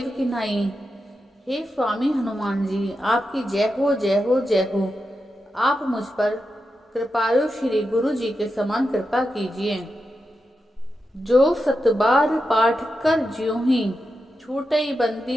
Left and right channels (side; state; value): both; normal; correlation 0.89